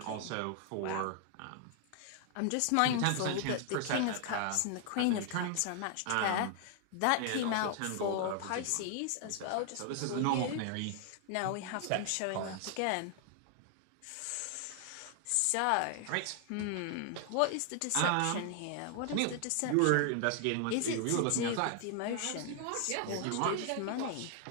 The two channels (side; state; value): both; different; correlation 0.00